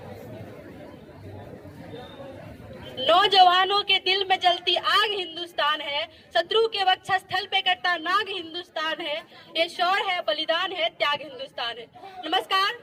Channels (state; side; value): identical; both; correlation 1.00